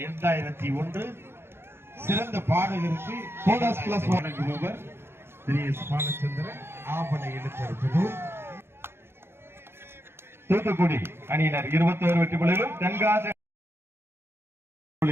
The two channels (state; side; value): late; left; 0.11 ms